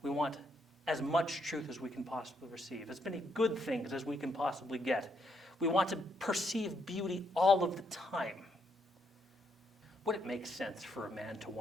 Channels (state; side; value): normal; both; correlation 0.75